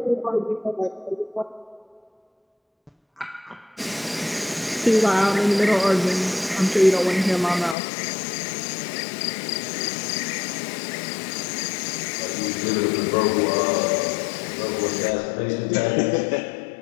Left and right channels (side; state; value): right; drops out; at 7.8 s